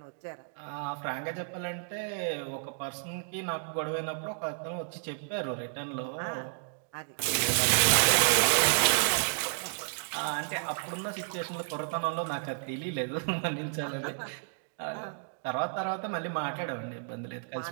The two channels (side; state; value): left; silent; digital silence